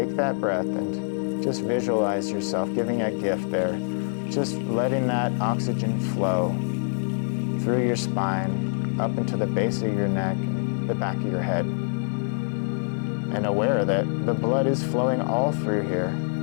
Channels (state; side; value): silent; right; digital silence